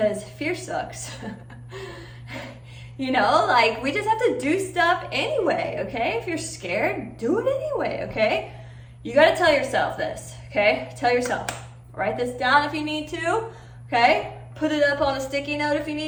fear sucks. You know, like we just have to do stuff anyway, okay? If you're scared, do it anyway, okay? You gotta tell yourself this, okay? Tell yourself. Write this down if you need to, okay? Put it up on a sticky note if you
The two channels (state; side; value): identical; both; correlation 1.00